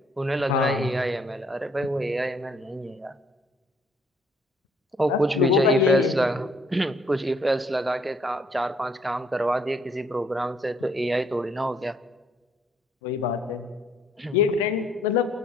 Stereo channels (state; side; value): normal; both; correlation 0.65